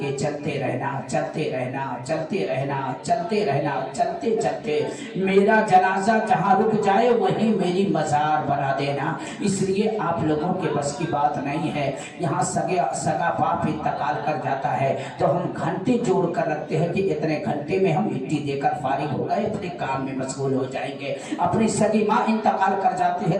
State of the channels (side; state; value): both; identical; correlation 1.00